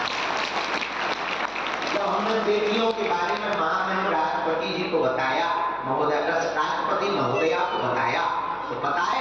जब हमने बेटियों के बारे में महामहिम राष्ट्रपति जी को बताया, महोदय राष्ट्रपति महोदया को बताया, तो पता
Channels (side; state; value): right; noise; hum, 26 dB below the sound